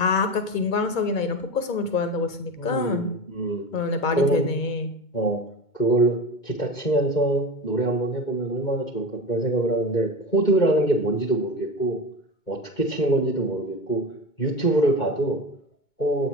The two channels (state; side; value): late; right; 2.2 ms